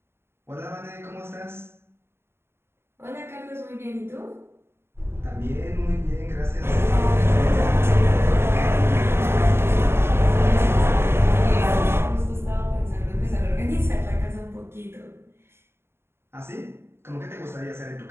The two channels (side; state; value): left; late; 0.12 ms